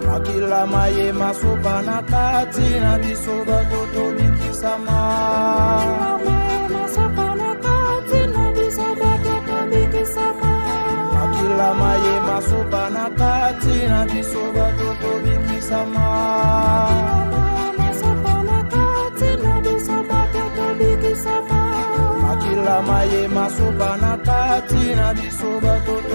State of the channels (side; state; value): both; inverted; correlation -1.00